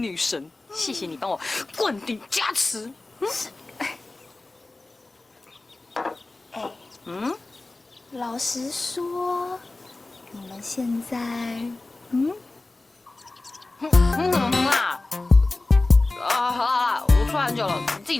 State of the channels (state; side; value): quieter; right; 3.1 dB